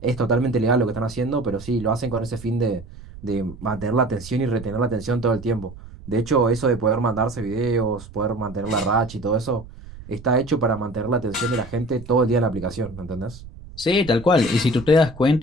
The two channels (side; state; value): right; noise; rumble, 16 dB below the sound